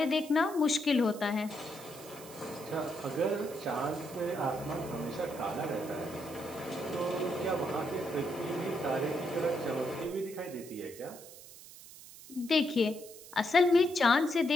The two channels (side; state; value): right; noise; hiss, 17 dB below the sound